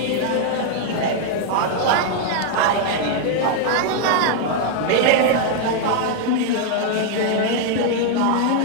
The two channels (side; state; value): both; different; correlation 0.00